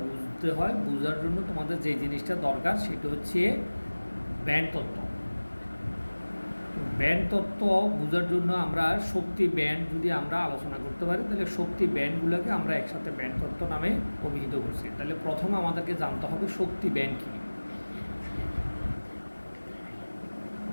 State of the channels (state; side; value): inverted; both; correlation -1.00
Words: বুঝতে হয়, বোঝার জন্য তোমাদের যে জিনিসটা দরকার সেটা হচ্ছে ব্যান্ড তত্ত্ব। ব্যান্ড তত্ত্ব বোঝার জন্য আমরা শক্তি ব্যান্ড যদি আমরা আলোচনা করতে পারি, তাহলে শক্তি ব্যান্ডগুলোকে আমরা একসাথে ব্যান্ড তত্ত্ব নামে অভিহিত করছি। তাহলে প্রথমে আমাদেরকে জানতে হবে শক্তি ব্যান্ড কী।